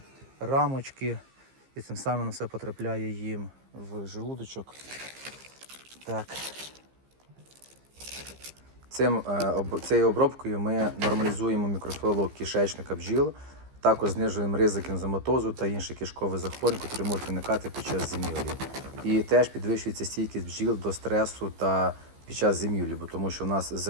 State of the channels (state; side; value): late; left; 15 ms